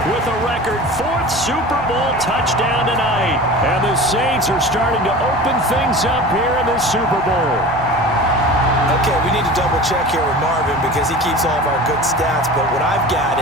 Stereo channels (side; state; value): both; normal; correlation 0.36